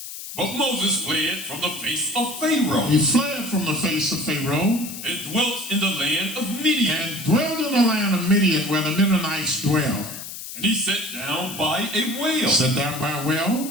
But Moses fled from the face of Pharaoh. He fled from the face of Pharaoh. And dwelt in the land of Midian. And dwelled in the land of Midian, where the Midianites dwell. And he sat down by a well. Sat down by a well.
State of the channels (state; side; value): noise; left; hiss, 10 dB below the sound